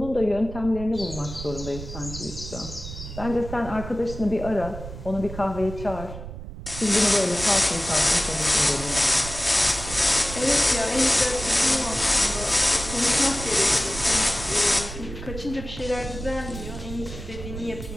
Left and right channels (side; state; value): right; noise; rumble, 10 dB below the sound